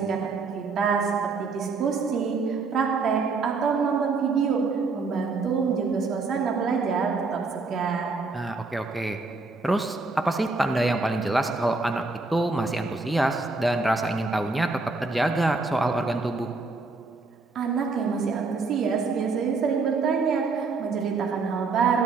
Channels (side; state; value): left; quieter; 4.0 dB